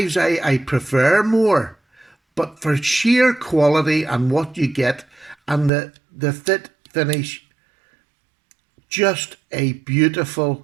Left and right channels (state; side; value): drops out; left; at 5.7 s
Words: I prefer more, but for sheer quality and what you get and the fit finish, just a